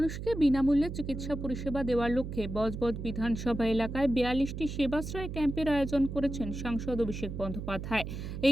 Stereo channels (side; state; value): right; noise; hum, 7 dB below the sound